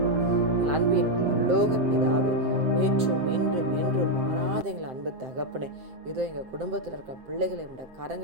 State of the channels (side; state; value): left; late; 7.7 ms